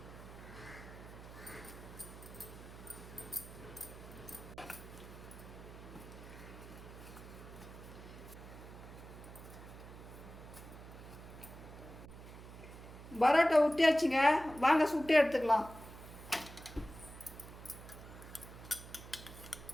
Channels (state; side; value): noise; right; hum, 14 dB below the sound